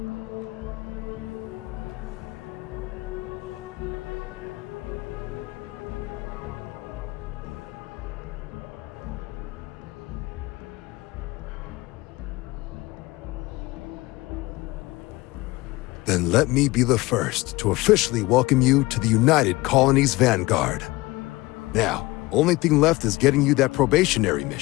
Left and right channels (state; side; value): quieter; right; 20.9 dB